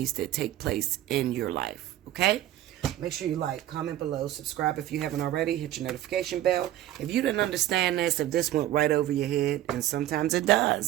to take place in your life. Okay? Make sure you like, comment below, subscribe if you haven't already, hit your notification bell. If you didn't understand this, if this went right over your head, and sometimes it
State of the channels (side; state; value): left; quieter; 13.4 dB